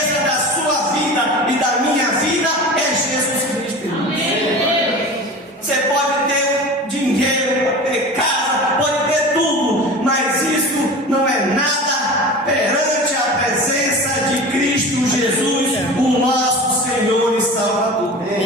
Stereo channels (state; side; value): normal; both; correlation 0.34